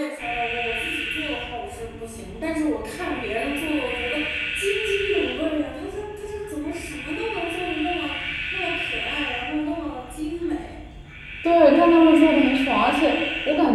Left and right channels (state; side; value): identical; both; correlation 1.00